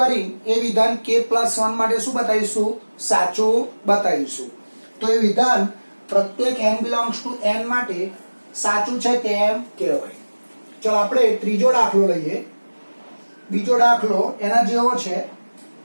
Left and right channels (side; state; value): both; inverted; correlation -1.00